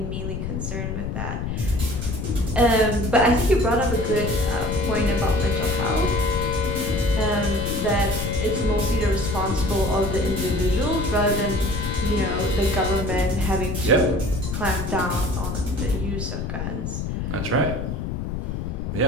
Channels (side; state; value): left; noise; rumble, 3 dB below the sound